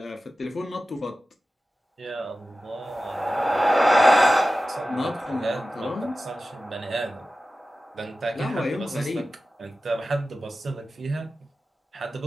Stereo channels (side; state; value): both; normal; correlation 0.94